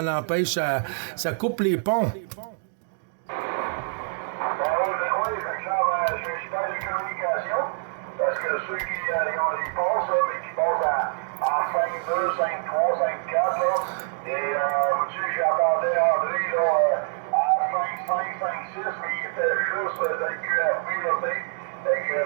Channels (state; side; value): silent; left; 61 dB below the other